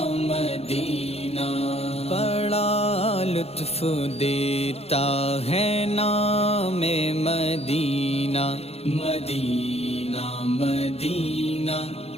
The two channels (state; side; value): late; right; 0.29 ms